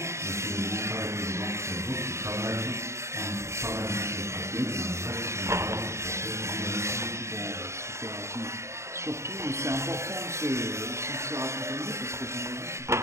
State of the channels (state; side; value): late; left; 0.14 ms